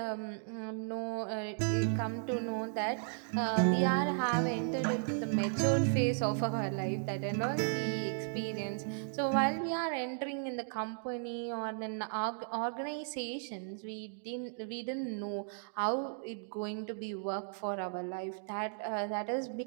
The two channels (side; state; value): left; silent; digital silence